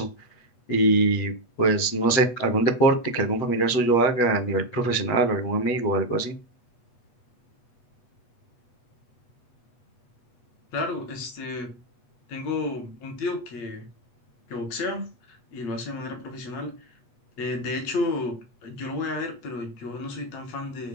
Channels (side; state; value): right; late; 8.2 ms